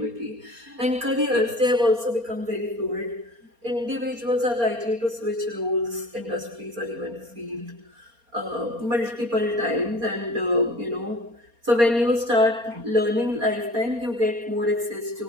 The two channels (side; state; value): left; late; 4.3 ms